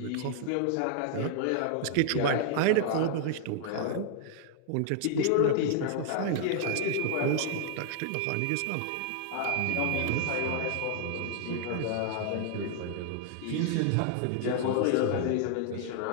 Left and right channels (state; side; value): different; both; correlation 0.00